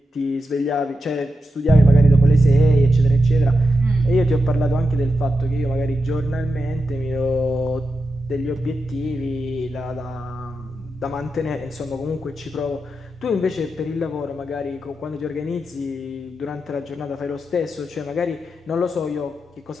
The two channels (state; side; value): normal; both; correlation 0.89